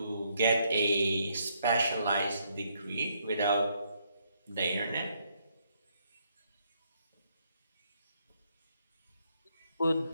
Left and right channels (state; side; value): inverted; both; correlation -0.73